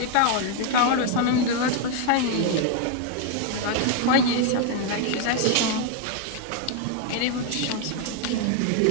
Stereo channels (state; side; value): different; both; correlation 0.01